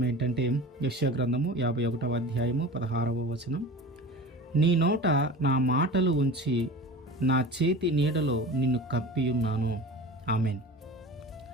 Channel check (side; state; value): both; normal; correlation 0.35